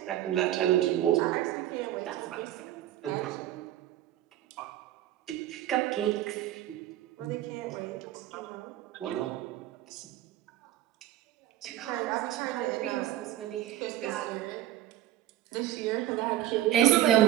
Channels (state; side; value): quieter; left; 13.2 dB